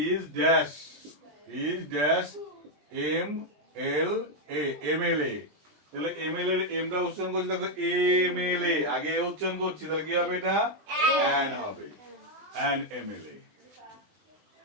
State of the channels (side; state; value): left; late; 20 ms